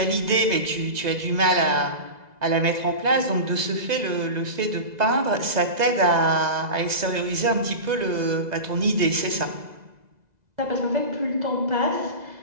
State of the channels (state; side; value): late; left; 2.0 ms